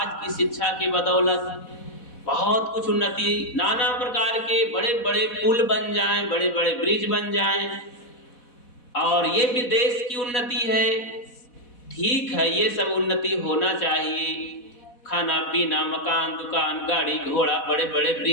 की शिक्षा के बदौलत बहुत कुछ उन्नति, नाना प्रकार के बड़े बड़े पुल बन जाएं, बड़े बड़े ब्रिज बन जाएं, और ये भी देश की उन्नति है। ठीक है, ये सब उन्नति होना चाहिए। खाना पीना, मकान, दुकान, गाड़ी घोड़ा, बड़े बड़े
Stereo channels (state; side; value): late; right; 4.1 ms